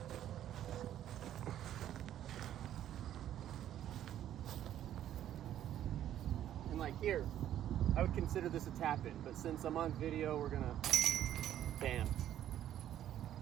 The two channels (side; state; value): left; quieter; 11.4 dB